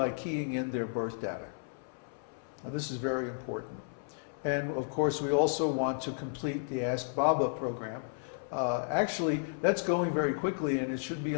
keying in their birth data. Now, this is very important. And of course, we also want to complete the Ask Baba program. Actually, that's going very quickly, and it should be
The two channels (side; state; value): right; silent; 56 dB below the other